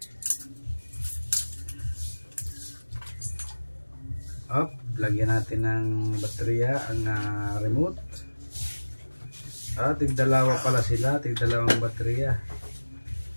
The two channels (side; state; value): both; inverted; correlation -1.00